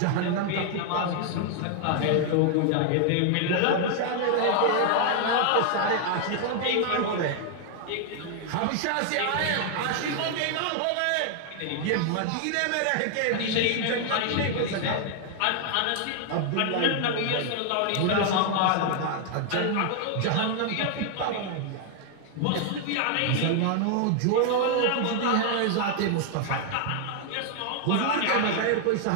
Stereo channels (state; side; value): different; both; correlation 0.00